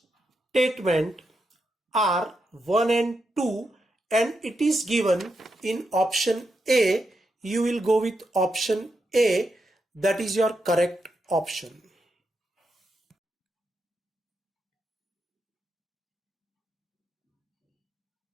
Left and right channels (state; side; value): normal; both; correlation 0.84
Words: are 1 and 2, and it is given in option A. You will go with option A, that is your correct option.